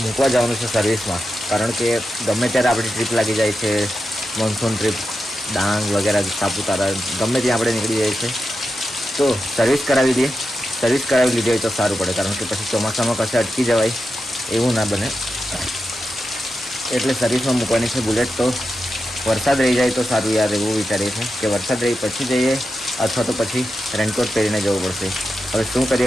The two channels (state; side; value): normal; both; correlation 0.89